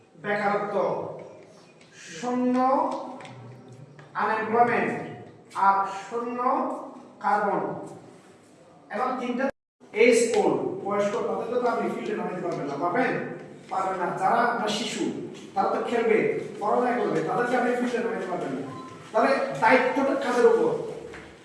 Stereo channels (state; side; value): identical; both; correlation 1.00